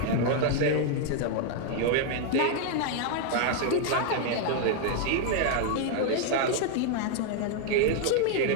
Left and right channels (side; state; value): both; different; correlation 0.00